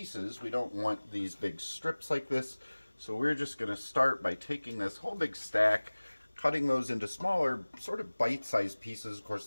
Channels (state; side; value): inverted; both; correlation -1.00